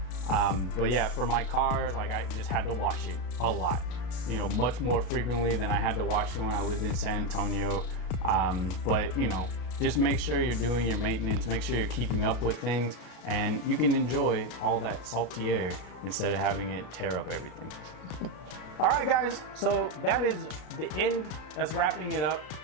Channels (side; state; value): right; late; 33 ms